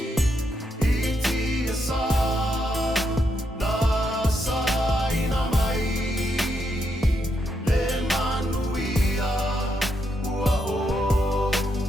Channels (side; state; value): both; normal; correlation 0.80